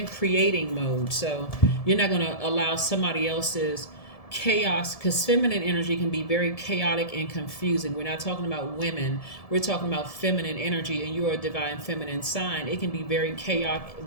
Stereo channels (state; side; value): late; right; 1.7 ms